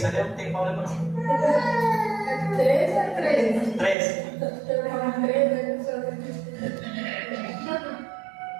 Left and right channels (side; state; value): left; drops out; at 4.0 s